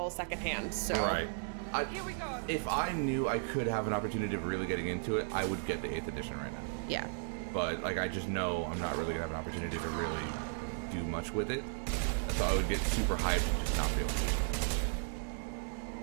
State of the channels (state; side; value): silent; left; 54 dB below the other